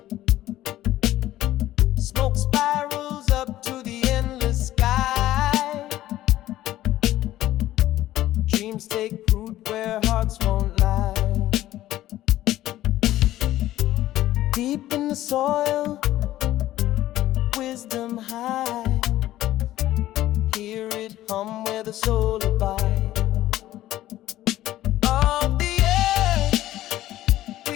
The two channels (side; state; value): right; quieter; 14.4 dB